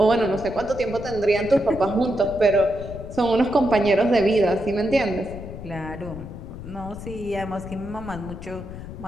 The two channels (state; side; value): noise; left; rumble, 11 dB below the sound